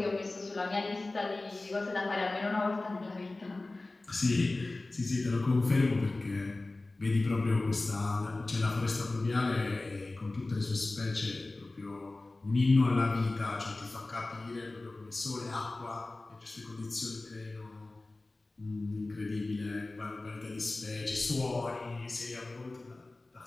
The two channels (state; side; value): quieter; right; 3.0 dB